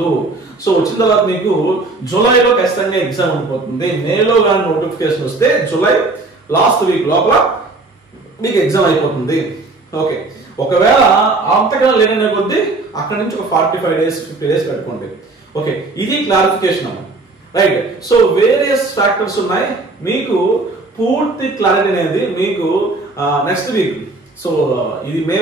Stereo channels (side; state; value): left; quieter; 3.4 dB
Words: సో వచ్చిన తర్వాత మీకు జూలైలో ఖచ్చితంగా ఎగ్జామ్ ఉండిపోతుంది. మేలో కానీ నోటిఫికేషన్ వస్తే జూలై లాస్ట్ వీక్ లోపల మీకు ఎగ్జామ్ అయిపోతుంది. ఓకే, ఒకవేళ అంతకన్నా లేదనే కొద్దీ అక్కడ నుంచి ఒక 45 days 50 days పెట్టుకోండి. ఓకే, ఇది క్లారిఫికేషన్ అమ్మ. రైట్, సో వేరియస్ ఫ్యాక్టర్స్ ఉన్నాయి. మీకు పూర్తి క్లారిటీ అనేది మీకు నెక్స్ట్ వీక్, సో ఇది మే